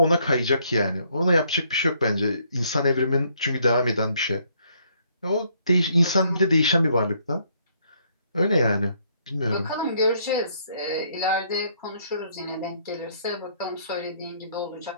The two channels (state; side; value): inverted; both; correlation -0.68